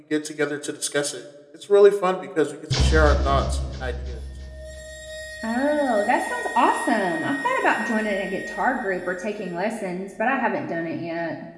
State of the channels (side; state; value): both; identical; correlation 1.00